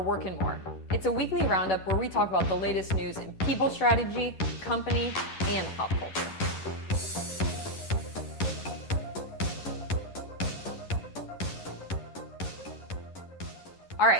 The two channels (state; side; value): late; right; 11 ms